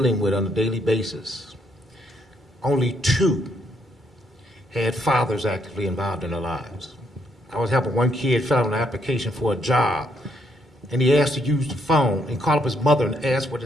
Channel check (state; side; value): normal; both; correlation 0.73